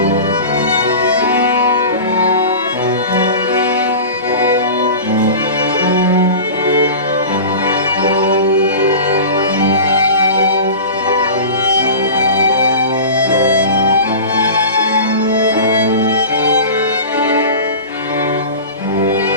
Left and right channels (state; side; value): inverted; both; correlation -0.33